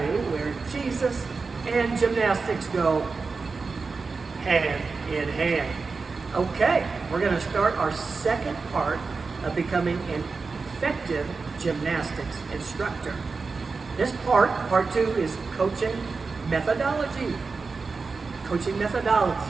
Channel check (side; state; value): left; quieter; 4.4 dB